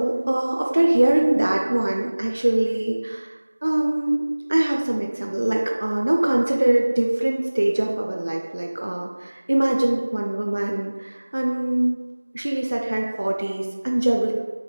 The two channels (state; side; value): inverted; both; correlation -1.00